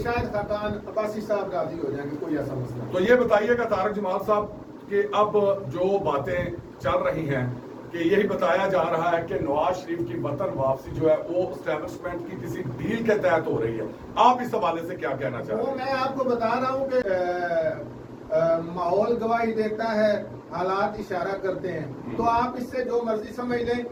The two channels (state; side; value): identical; both; correlation 1.00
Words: شاید خاقان عباسی صاحب راضی ہو جائیں گے، کوئی ایسا مسئلہ. تو یہ بتائیے گا طارق جمال صاحب کہ اب جو باتیں چل رہی ہیں کہ یہی بتایا جا رہا ہے کہ نواز شریف کی وطن واپسی جو ہے وہ اسٹیبلشمنٹ کی کسی ڈیل کے تحت ہو رہی ہے، آپ اس حوالے سے کیا کہنا چاہتے ہیں؟ میں آپ کو بتا رہا ہوں کہ ماحول گواہی دیتا ہے، حالات اشارہ کرتے ہیں. تو آپ اس سے جو مرضی سمجھ لیں،